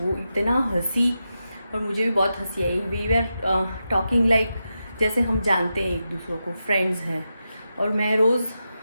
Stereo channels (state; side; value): inverted; both; correlation -0.89